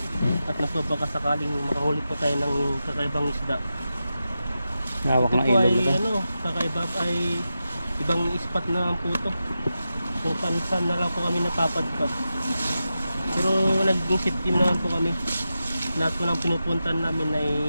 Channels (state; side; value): inverted; both; correlation -0.91